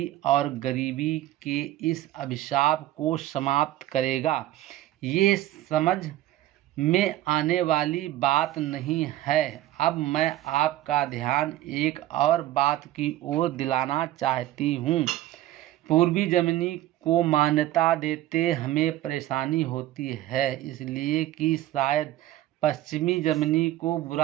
और गरीबी के इस अभिशाप को समाप्त करेगा। ये समझ में आने वाली बात नहीं है। अब मैं आपका ध्यान एक और बात की ओर दिलाना चाहती हूँ। पूर्वी जर्मनी को मान्यता देते हमें परेशानी होती है, इसलिए कि शायद पश्चिमी जर्मनी को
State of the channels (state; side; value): quieter; left; 14.5 dB